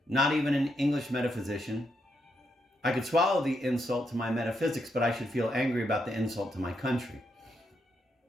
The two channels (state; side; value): normal; both; correlation 0.80